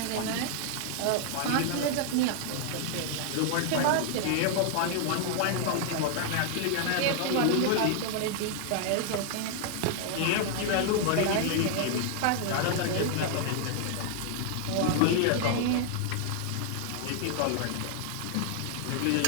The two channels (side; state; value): both; different; correlation 0.00